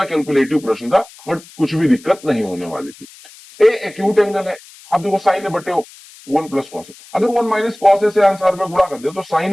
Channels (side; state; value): left; noise; hiss, 22 dB below the sound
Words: कैलकुलेटिव प्रश्न था, बट कुछ भी दिक्कत नहीं होने वाली थी। ए एक्यूट एंगल है। अब देखो साइन ए बटे 1 + cos ए, अगर 1 - cos ए से आंसर में गुणा कर दे तो